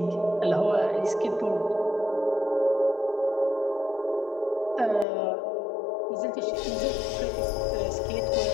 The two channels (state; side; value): drops out; right; at 5.1 s